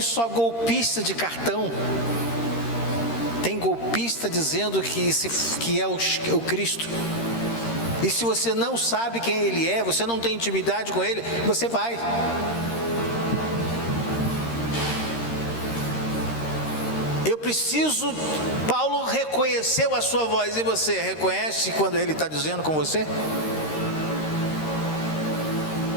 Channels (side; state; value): right; late; 13 ms